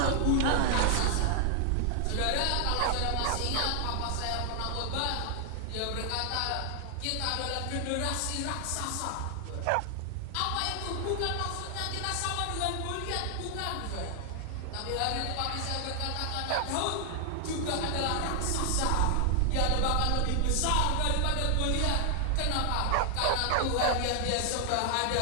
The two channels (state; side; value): different; both; correlation 0.00